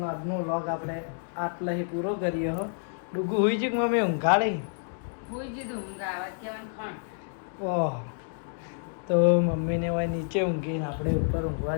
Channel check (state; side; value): silent; right; digital silence